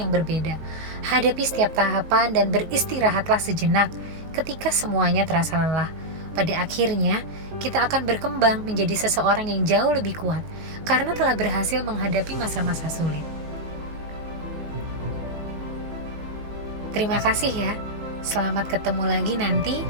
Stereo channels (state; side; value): late; left; 19 ms